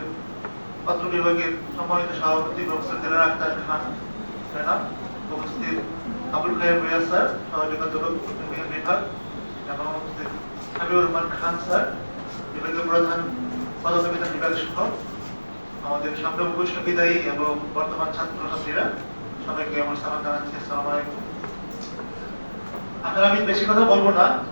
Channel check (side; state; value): both; inverted; correlation -1.00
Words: পত্র বিভাগের সম্মানিত সভাপতি প্রফেসর দিলারা আক্তার খান ম্যাডাম, উপস্থিত আবুল খায়ের ভূঁইয়া স্যার, সহযোগী অধ্যাপক বিভাগ, এবং উপস্থিত হাবিবুর রহমান খান স্যার, বিভাগীয় প্রধান পদার্থবিজ্ঞান বিভাগ সহ আমাদের সামনে উপস্থিত বিদায়ী এবং বর্তমান ছাত্রছাত্রীরা, সবাইকে আমার সালাম জানাচ্ছি। আসসালামু আলাইকুম। আসলে আমি বেশি কথা বলবো না।